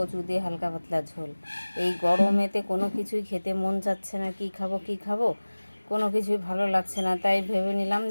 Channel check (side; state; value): both; inverted; correlation -1.00